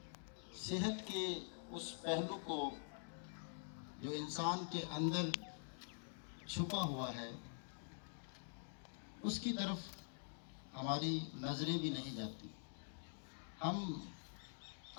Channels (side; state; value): right; silent; digital silence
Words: صحت کے اس پہلو کو جو انسان کے اندر چھپا ہوا ہے اس کی طرف ہماری نظریں بھی نہیں جاتی. ہم